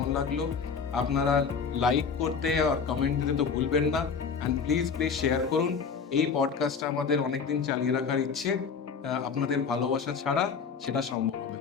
লাগলো। আপনারা লাইক করতে আর কমেন্ট দিতে তো ভুলবেন না, অ্যান্ড প্লিজ শেয়ার করুন। এই পডকাস্টটা আমাদের অনেকদিন চালিয়ে রাখার ইচ্ছে, আপনাদের ভালোবাসা ছাড়া সেটা সম্ভব হবে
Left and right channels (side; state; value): right; quieter; 5.8 dB